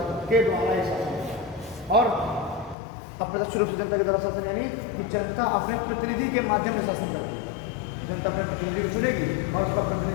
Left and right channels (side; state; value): right; drops out; at 2.8 s